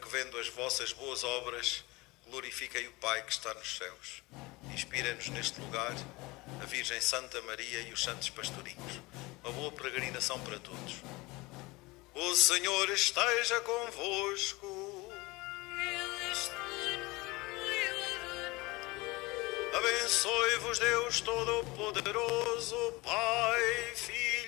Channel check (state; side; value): quieter; right; 22.9 dB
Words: vendo as vossas boas obras, glorifiquem o Pai que está nos céus. Inspirem-nos neste lugar a Virgem Santa Maria e os santos pastorinhos. Uma boa peregrinação para todos. O Senhor esteja convosco. Abençoe-vos Deus Todo-Poderoso, Pai,